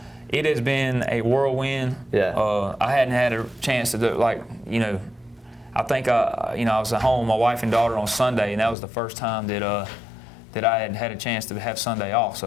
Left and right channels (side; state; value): right; drops out; at 8.8 s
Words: It has been a whirlwind. Yeah. I hadn't had a chance to do I think I was at home with my wife and daughter on Sunday, and that was the first time that I had a chance to have Sunday off.